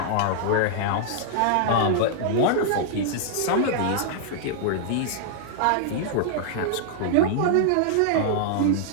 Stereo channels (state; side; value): different; both; correlation -0.01